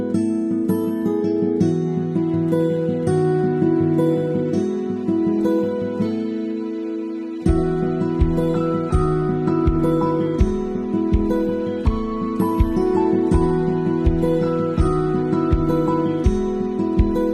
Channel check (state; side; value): identical; both; correlation 1.00